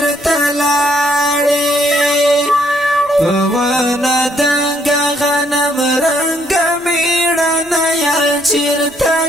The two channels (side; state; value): right; noise; rumble, 27 dB below the sound